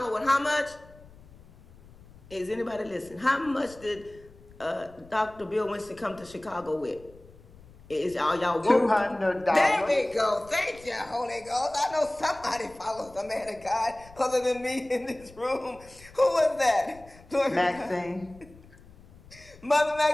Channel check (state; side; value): noise; left; rumble, 23 dB below the sound